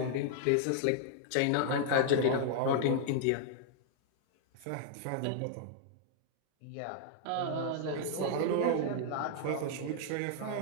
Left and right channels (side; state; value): both; different; correlation 0.00